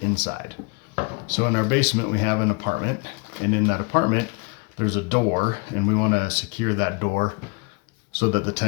inside. So in our basement we have an apartment, and in that apartment there's a door, and we want to secure that door so that the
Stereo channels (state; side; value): quieter; right; 30.2 dB